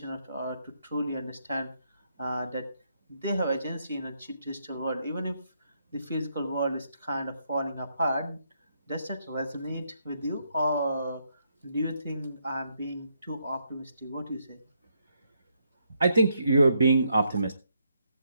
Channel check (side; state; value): both; inverted; correlation -0.77